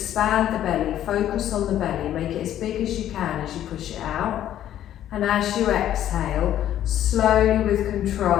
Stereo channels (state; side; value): quieter; right; 11.7 dB